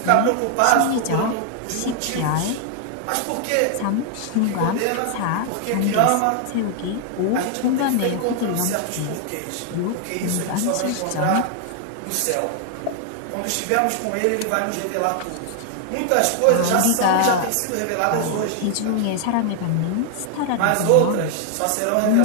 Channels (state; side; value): different; both; correlation 0.00